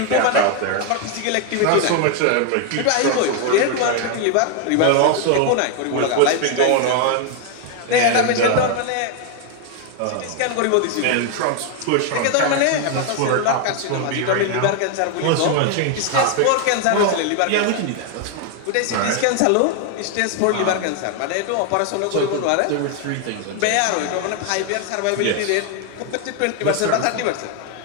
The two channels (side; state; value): both; different; correlation 0.01